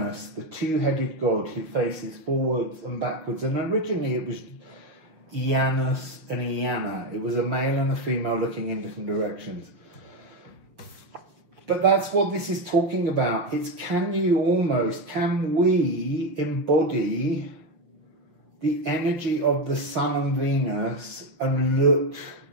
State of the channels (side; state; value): left; late; 6.2 ms